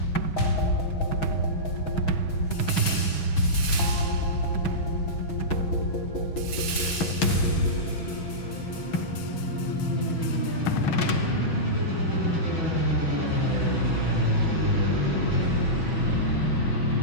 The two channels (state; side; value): late; right; 6.1 ms